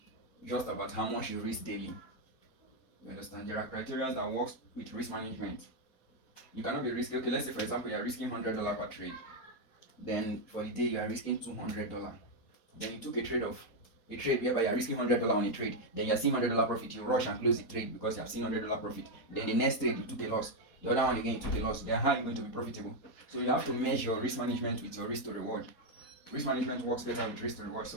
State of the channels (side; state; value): right; late; 4.2 ms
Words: just about how much you risk daily. You understand? There are criteria that works with risk management. You cannot be risking, okay, let's say for example you are risking $100 per trade. Then for the day you are risking $200. Then you took a trade whereby you are risking $100 on a trade. Then you are seeing $100 profit. You rush and close the trade because you have seen $100 profit. Then the next trade you took a loss. The other one again you took a loss. Then how are you going to be profitable? So you have to measure your risk management with your risk to reward. Risk management works better with risk to reward. So